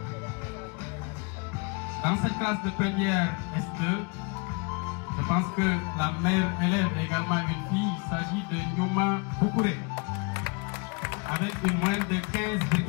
Dans cette classe de première S2, je pense que la meilleure élève est également une fille. Il s'agit de Nyuma Boukouré, avec une moyenne de 15,54.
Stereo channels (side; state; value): right; quieter; 31.3 dB